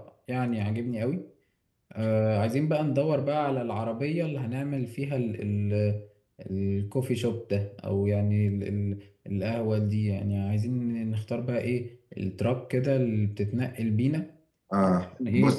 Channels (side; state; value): both; identical; correlation 1.00